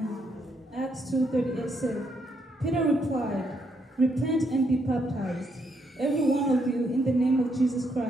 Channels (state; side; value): normal; both; correlation 0.76